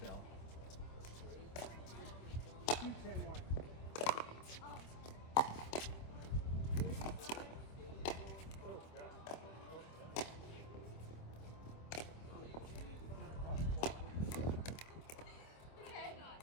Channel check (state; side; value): late; right; 26 ms